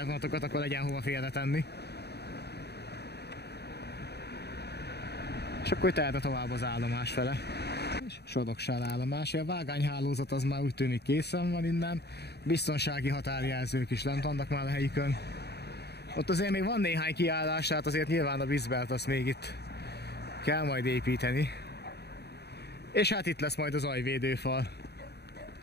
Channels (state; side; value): late; right; 0.48 ms